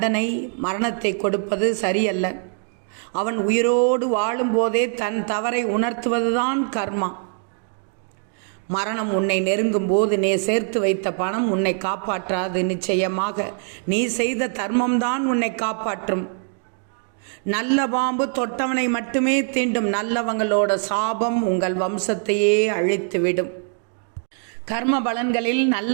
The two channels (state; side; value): silent; left; 57 dB below the other